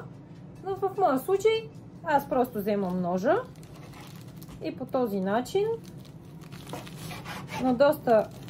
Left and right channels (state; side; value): identical; both; correlation 1.00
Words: Но в моя случай аз просто вземам ножа и по този начин на доста